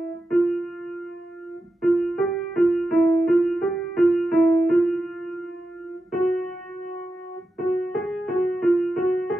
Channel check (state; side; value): normal; both; correlation 0.90